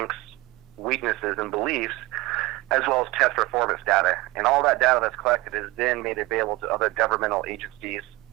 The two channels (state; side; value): quieter; left; 20.7 dB